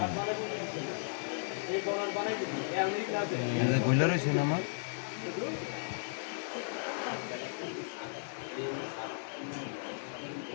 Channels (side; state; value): right; silent; digital silence